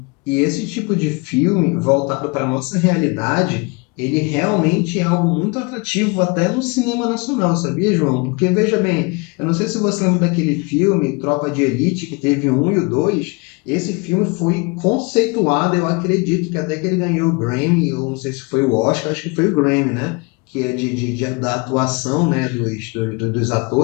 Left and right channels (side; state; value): right; quieter; 29.2 dB